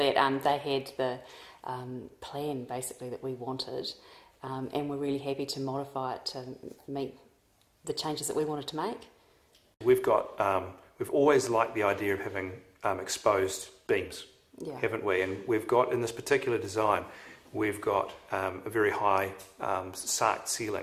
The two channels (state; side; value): identical; both; correlation 1.00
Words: they had the plan basically that we wanted, and we're really happy to modify it to meet the changes that we wanted to make. We've always liked the idea of having exposed beams, yeah, haven't we? And we've got, in this particular design, we've got a very high sarked